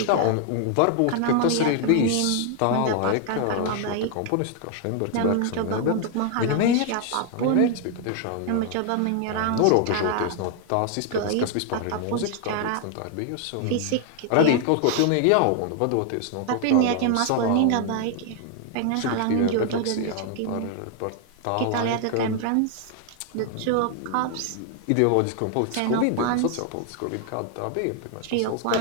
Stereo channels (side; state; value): both; different; correlation 0.00